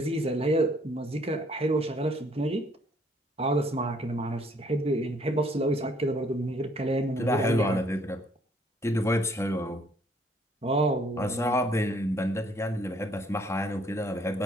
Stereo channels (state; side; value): normal; both; correlation 0.64